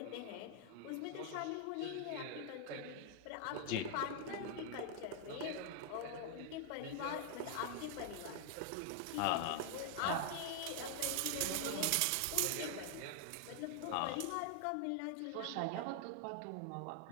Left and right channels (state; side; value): different; both; correlation 0.00